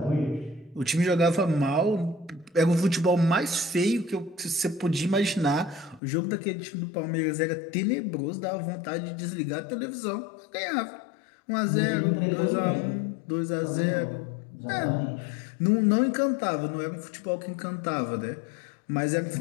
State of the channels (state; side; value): drops out; right; at 6.0 s